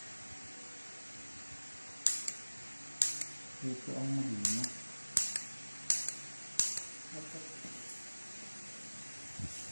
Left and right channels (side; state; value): both; inverted; correlation -1.00